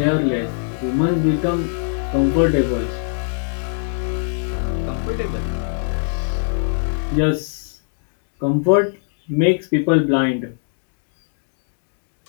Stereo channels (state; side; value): silent; right; digital silence